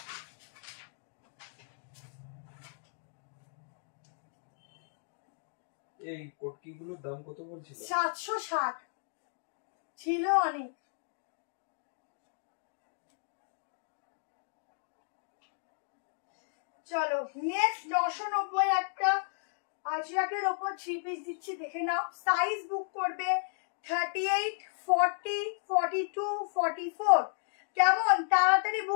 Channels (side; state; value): right; silent; digital silence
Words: এই কোটকিগুলোর দাম কত বলছিল? 760 ছিল অনেক। চলো নেক্সট 990 একটা আজরাকের উপর 3 পিস দিচ্ছি, দেখে নাও। সাইজ বুক করবে 38, 40, 42, 44, কেমন তাড়াতাড়ি